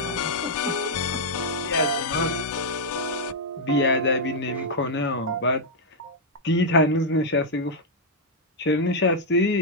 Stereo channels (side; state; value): both; normal; correlation -0.04